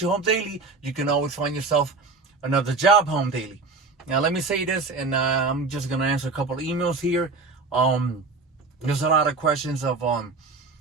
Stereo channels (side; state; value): left; quieter; 4.0 dB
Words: you home daily, you can always find yourself another job home daily. Now, let me say this, and I'm just going to answer a couple of emails here. There's a lot of questions of